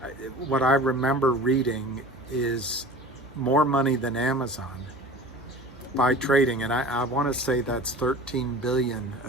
what I remember reading is more money than Amazon by trading, and I want to say that's 13 billion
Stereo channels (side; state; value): both; normal; correlation 0.40